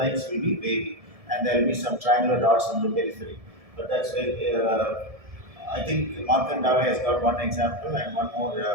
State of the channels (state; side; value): late; left; 1.7 ms